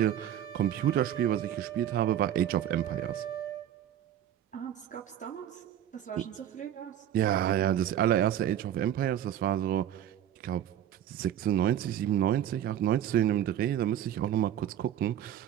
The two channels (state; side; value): quieter; left; 10.8 dB